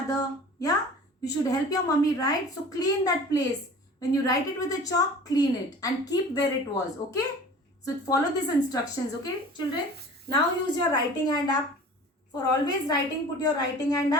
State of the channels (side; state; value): both; normal; correlation 0.42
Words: Yeah, you should help your mummy, right? So clean that place. When you write it with a chalk, clean it and keep where it was. Okay, so follow these instructions. Okay children, now use your writing hand up. For always writing, put your writing hand